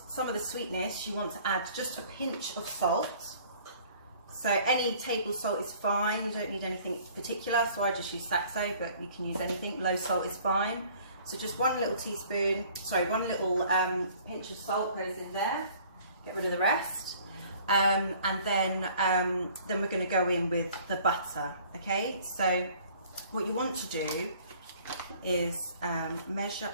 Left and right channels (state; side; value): inverted; both; correlation -0.54